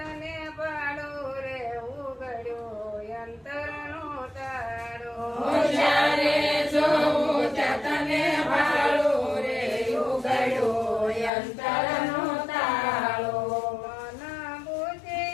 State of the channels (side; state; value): right; drops out; at 11.3 s